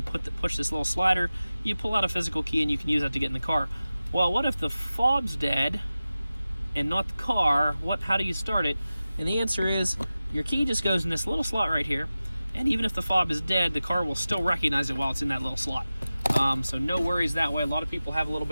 push this little slider, you pull out a physical key and you can use that to get in the car. Well, what if the fob's dead and not the car? How do you start it? And the answer is, your key just goes in this little slot right here, and even if the fob is dead, the car will still recognize it while it's in that little slot. So no worries that way. A lot of people have a little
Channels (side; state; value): both; inverted; correlation -0.95